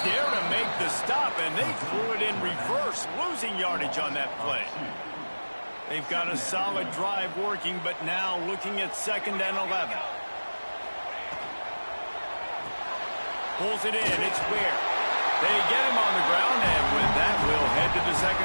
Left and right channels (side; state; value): both; inverted; correlation -1.00